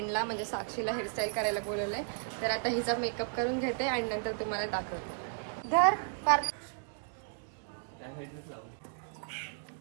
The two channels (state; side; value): silent; left; digital silence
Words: म्हणजे साक्षीला हेअरस्टाईल करायला बोलवले. तर आता हिचा मेकअप करून घेते आणि नंतर तुम्हाला दाखवते. धर पार